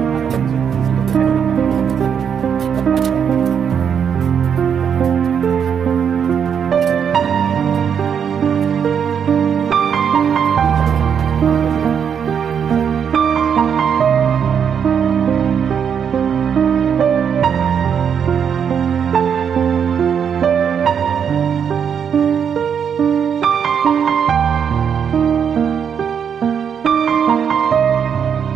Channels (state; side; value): quieter; left; 7.6 dB